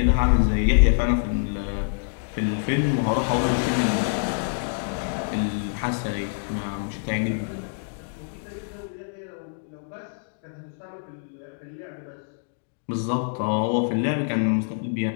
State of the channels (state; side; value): silent; right; digital silence